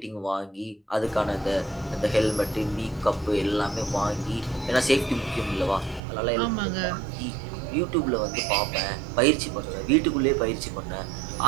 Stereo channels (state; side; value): drops out; left; at 6.0 s